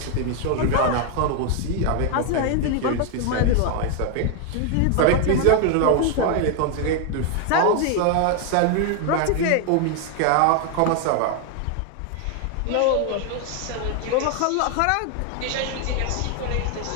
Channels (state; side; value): different; both; correlation 0.00